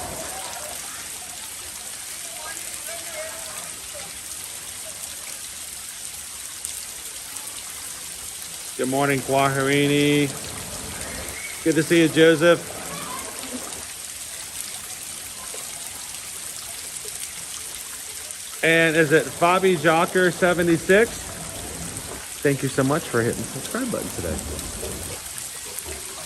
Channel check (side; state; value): both; identical; correlation 1.00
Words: Good morning, Kwaharini. Good to see you, Joseph. And is it Fabi Jocker 76? Thank you so much for hitting the subscribe button today.